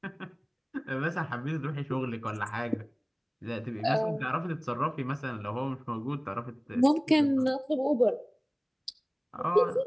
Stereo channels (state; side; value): identical; both; correlation 1.00